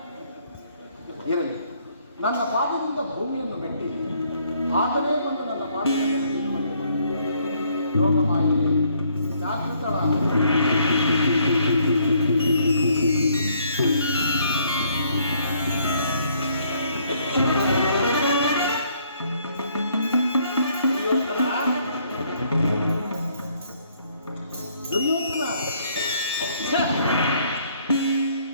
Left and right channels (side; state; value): both; inverted; correlation -0.67